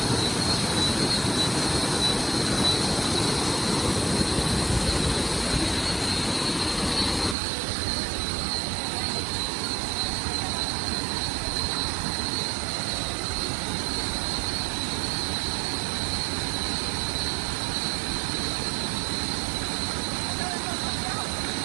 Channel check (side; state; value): left; drops out; at 7.4 s